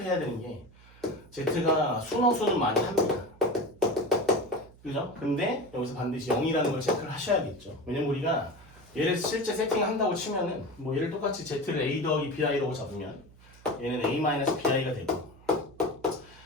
되는 게 Z가 순허수는 많이 합니다. 그죠? 근데 여기서 반드시 0이라는 걸 체크를 하셔야겠죠. 왜냐면 우리가 얘를 실제 세팅한다고 치면은 뭐 얘를 똑같이 Z를 A 더하기 BI라고 잡으면 얘는 A 마이너스 BI가 되고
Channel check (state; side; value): noise; right; hum, 24 dB below the sound